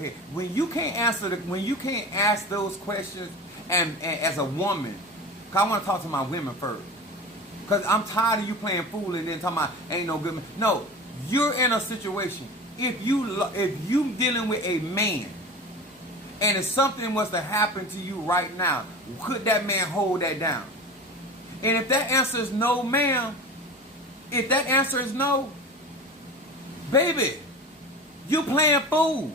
When you can't ask those questions, and as a woman, cause I want to talk to my women first. Because I'm tired of you playing fool and then talking about ain't no good man. No, you're in a situation. If you dealing with a man, and if something was to happen to you right now, could that man hold that down? And if that answer is no, ma'am, if that answer is no, baby, you playing fool.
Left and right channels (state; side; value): normal; both; correlation 0.33